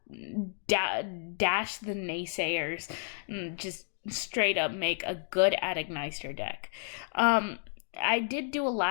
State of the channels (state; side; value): silent; right; 57 dB below the other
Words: Dash the naysayers and just straight up make a good at Ignister deck. I did do a